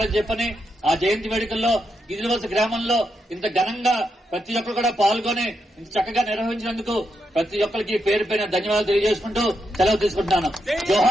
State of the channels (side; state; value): both; normal; correlation 0.83